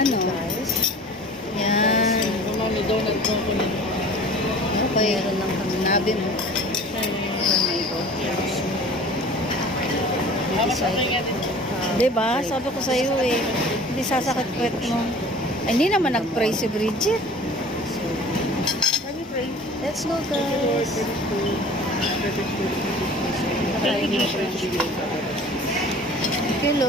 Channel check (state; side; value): normal; both; correlation 0.44